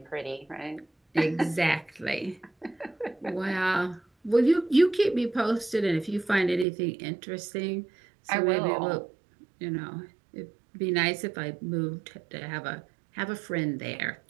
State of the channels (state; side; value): drops out; left; at 6.7 s